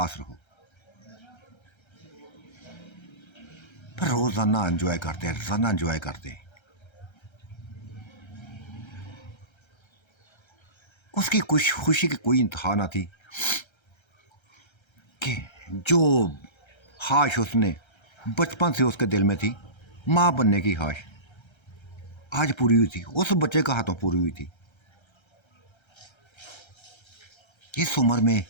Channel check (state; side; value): late; right; 1.3 ms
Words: रहो। पर रोजाना एंजॉय करते, रोजाना एंजॉय करते। उसकी कुछ खुशी की कोई इंतहा ना थी कि जो ख्वाहिश उसने बचपन से उसके दिल में थी, माँ बनने की ख्वाहिश, आज पूरी हुई थी, उस बच्चे का हाथों पूरी हुई थी। इस उम्र में